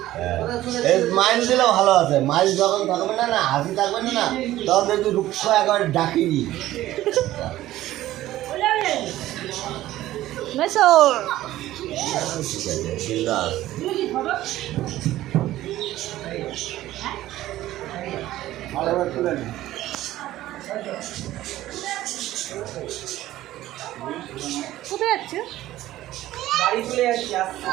এই মাইন্ড দিলেও ভালো আছে। মাইল যখন থাকবে না, না হাসি থাকবে না, না তখন দেখবি রুক্ষ একেবারে ডাকিনি। মেসর ঠিক আছে, বিন্দাস। কোথায় যাচ্ছে? বাড়ি চলে যাচ্ছি।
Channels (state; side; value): quieter; left; 14.9 dB